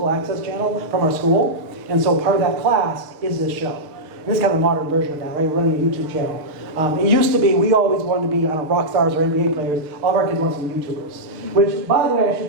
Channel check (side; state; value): left; late; 6.6 ms